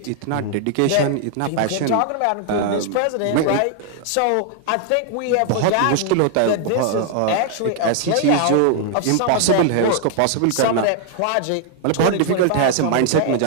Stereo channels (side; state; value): both; different; correlation 0.00